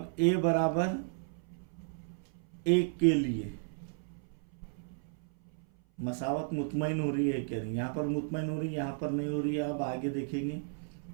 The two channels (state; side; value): silent; left; 55 dB below the other